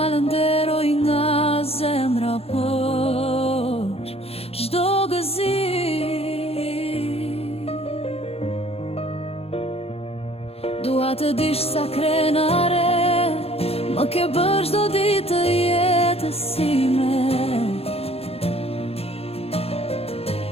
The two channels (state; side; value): late; right; 0.29 ms